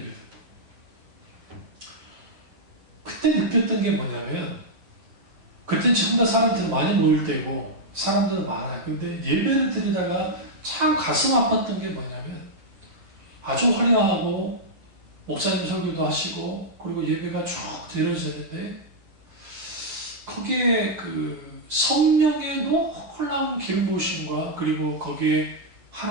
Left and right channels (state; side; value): late; left; 9.2 ms